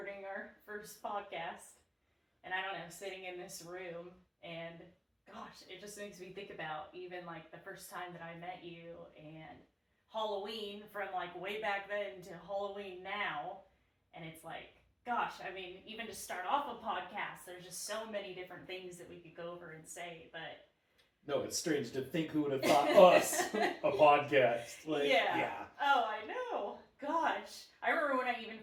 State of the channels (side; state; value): both; identical; correlation 1.00